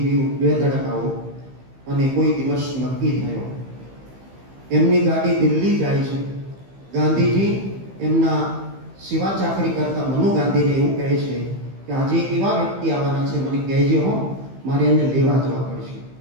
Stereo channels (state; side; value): late; left; 15 ms